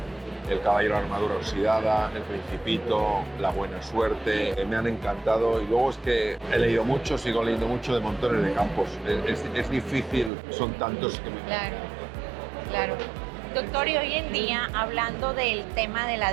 El caballero de armadura oxidada, El Principito, La buena suerte. Me han encantado y luego es que he leído mucho, sigo leyendo mucho de montones de campos. Es difícil, son tantos que me... Claro, claro. Doctor, y hoy en día, hablando del tema de la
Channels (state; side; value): drops out; left; at 10.3 s